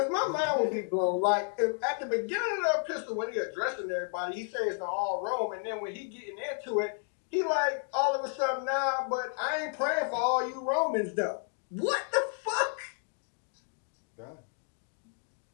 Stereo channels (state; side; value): silent; right; 57 dB below the other